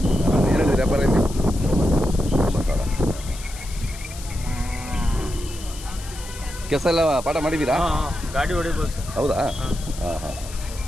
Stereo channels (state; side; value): noise; left; hiss, 15 dB below the sound